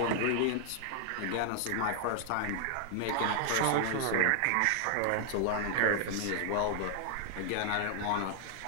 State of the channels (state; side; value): different; both; correlation -0.01